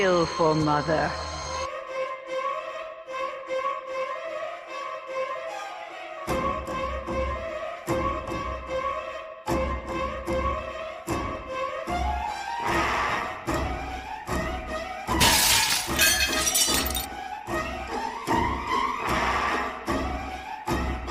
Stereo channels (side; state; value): both; identical; correlation 1.00